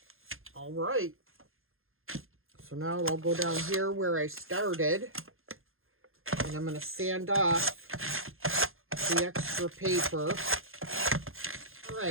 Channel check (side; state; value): left; late; 0.60 ms